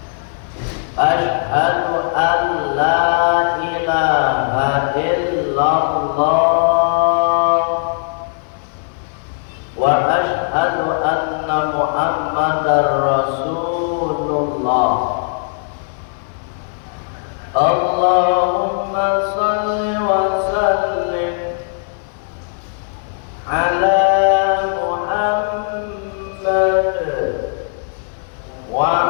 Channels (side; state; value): right; silent; digital silence